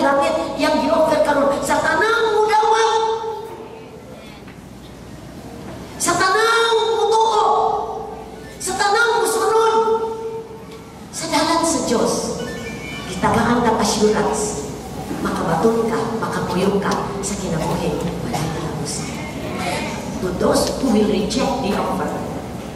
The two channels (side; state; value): both; identical; correlation 1.00